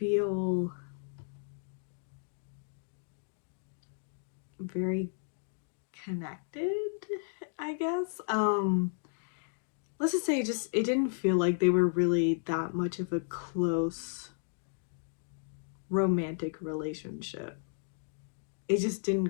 very connected, I guess. Let's just say it didn't feel like they were really that much of a close romantic relationship. It just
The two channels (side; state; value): right; silent; digital silence